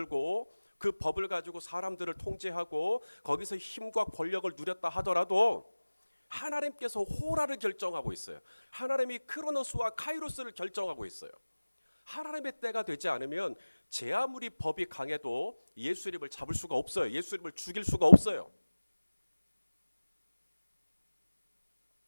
그 법을 가지고 사람들을 통제하고 거기서 힘과 권력을 누렸다 하더라도 하나님께서 호라를 결정하고 있어요. 하나님이 크로노스와 카이로스를 결정하고 있어요. 하나님의 때가 되지 않으면 제 아무리 법이 강해도 예수님을 잡을 수가 없어요. 예수님을 죽일 수가 없어요.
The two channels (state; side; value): inverted; both; correlation -1.00